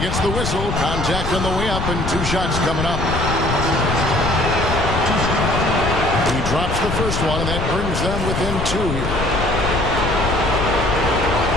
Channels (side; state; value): left; noise; rumble, 3 dB below the sound